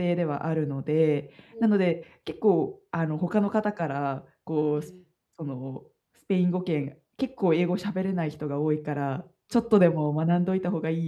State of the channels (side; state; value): both; identical; correlation 1.00